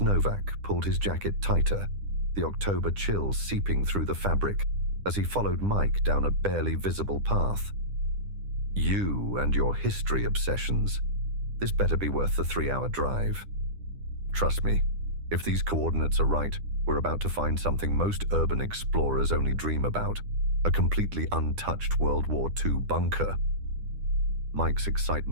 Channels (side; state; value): left; late; 10 ms